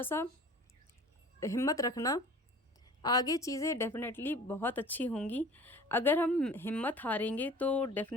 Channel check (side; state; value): both; normal; correlation 0.44